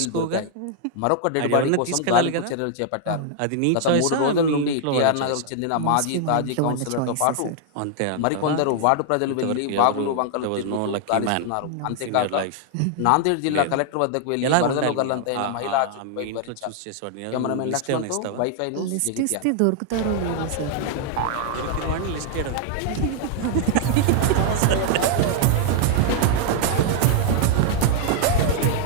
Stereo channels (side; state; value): both; different; correlation 0.00